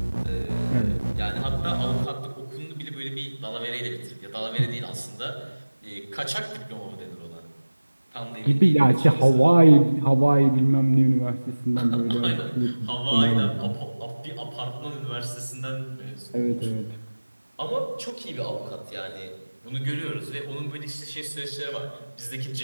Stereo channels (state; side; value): inverted; both; correlation -1.00